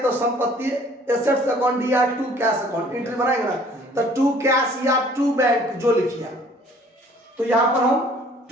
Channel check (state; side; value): normal; both; correlation 0.55